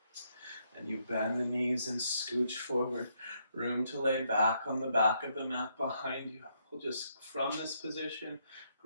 And you bend the knees and scooch forward. Room to lay back on the back of the mat behind you. We'll just, from this position,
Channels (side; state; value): both; inverted; correlation -0.75